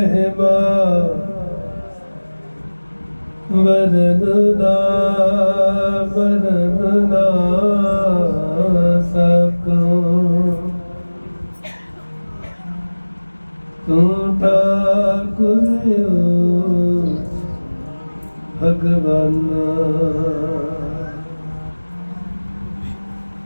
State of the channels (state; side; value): inverted; both; correlation -1.00